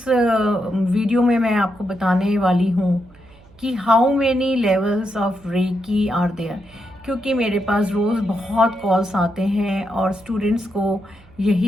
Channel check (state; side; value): noise; right; hum, 26 dB below the sound